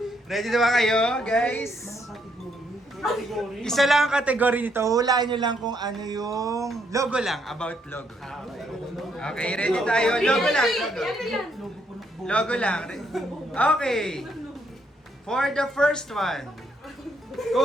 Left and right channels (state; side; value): normal; both; correlation 0.73